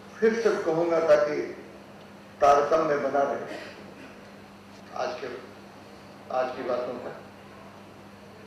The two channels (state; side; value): identical; both; correlation 1.00